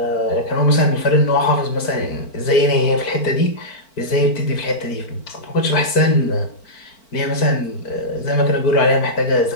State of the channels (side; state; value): right; late; 4.5 ms